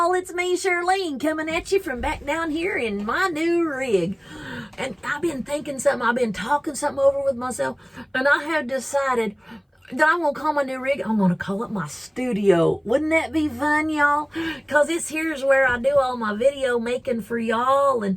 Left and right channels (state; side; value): identical; both; correlation 1.00